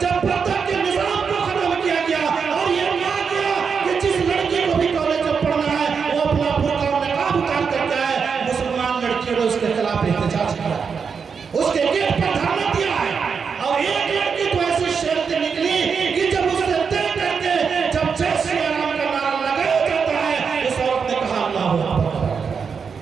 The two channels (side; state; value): left; quieter; 6.0 dB